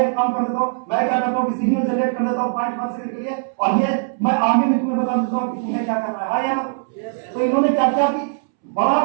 काम कर देता हूं, मैं क्या करता हूं कि सिग्नल जनरेट कर देता हूं 0.1 सेकंड के लिए, और ये मैं आगे भी तुम्हें बता देता हूं कि तुम्हें क्या करना है, हाँ या ना। तो इन्होंने क्या किया कि बड़ा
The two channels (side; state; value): left; silent; 65 dB below the other